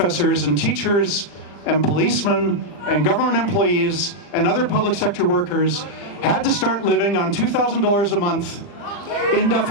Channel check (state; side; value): late; right; 40 ms